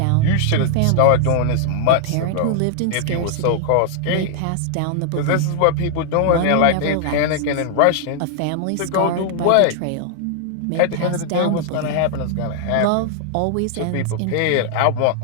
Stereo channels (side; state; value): both; different; correlation 0.00